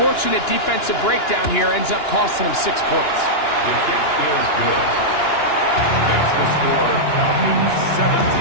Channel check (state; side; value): late; right; 2.9 ms